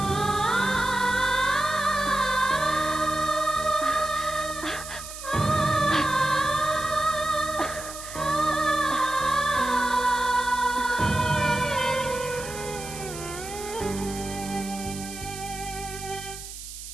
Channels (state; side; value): noise; right; hiss, 11 dB below the sound